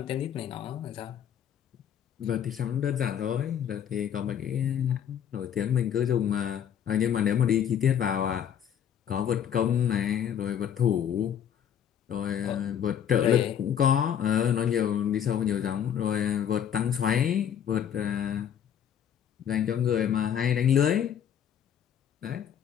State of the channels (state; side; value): quieter; right; 9.0 dB